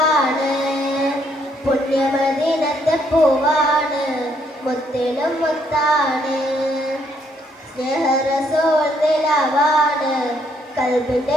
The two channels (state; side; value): normal; both; correlation 0.70